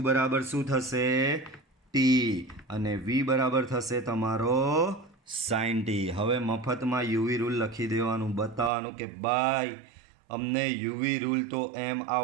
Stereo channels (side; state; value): left; drops out; at 8.7 s